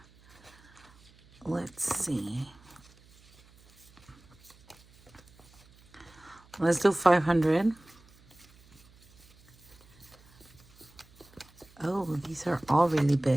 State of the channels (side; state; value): right; noise; hum, 27 dB below the sound